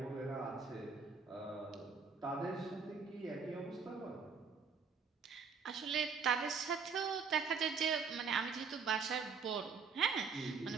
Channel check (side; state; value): left; quieter; 5.5 dB